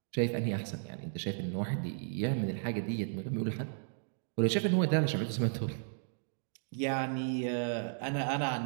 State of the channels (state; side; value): silent; left; digital silence